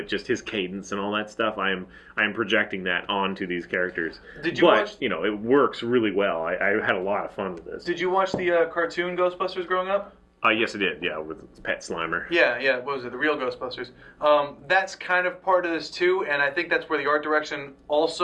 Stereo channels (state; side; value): identical; both; correlation 1.00